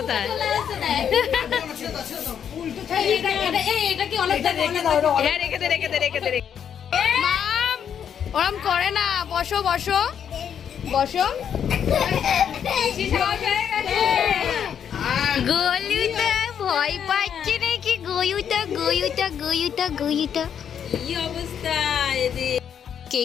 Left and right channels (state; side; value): quieter; right; 8.4 dB